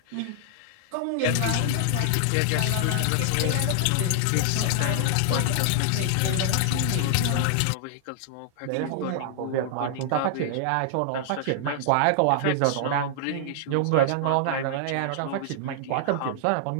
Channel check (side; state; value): both; different; correlation -0.01